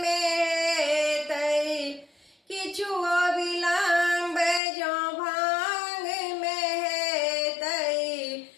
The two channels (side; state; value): right; drops out; at 4.6 s